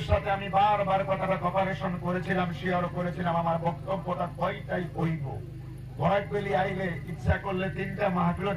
সাথে আমি বারবার কথাটা কপারেশন করেছিলাম, শেয়ার করেছিলাম আমার বক্তব্যটা কয়টাই কইব। বরাকবেলি আইলে ইচ্ছা করলে 3টা মাহফিলও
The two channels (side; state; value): both; identical; correlation 1.00